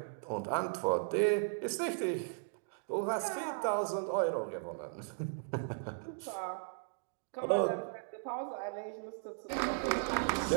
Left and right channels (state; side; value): silent; left; digital silence